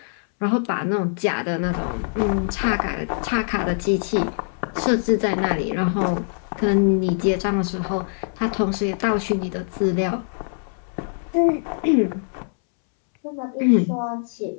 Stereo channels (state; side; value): silent; right; 63 dB below the other